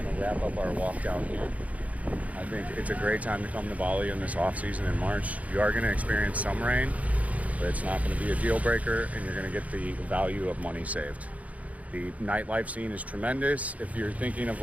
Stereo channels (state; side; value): late; left; 0.069 ms